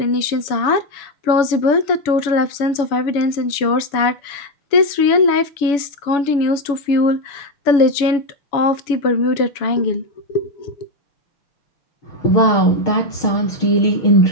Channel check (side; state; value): right; late; 7.0 ms